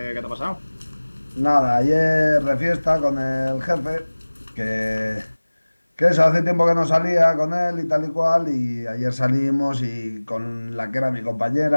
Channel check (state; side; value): inverted; both; correlation -1.00